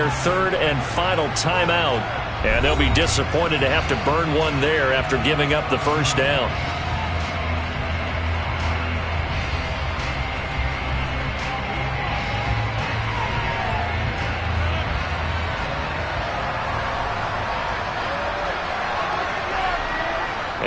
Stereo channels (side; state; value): both; identical; correlation 1.00